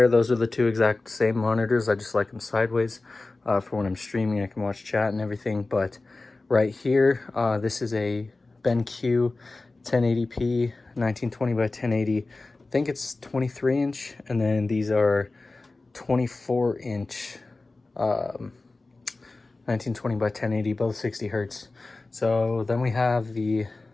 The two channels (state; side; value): quieter; right; 3.3 dB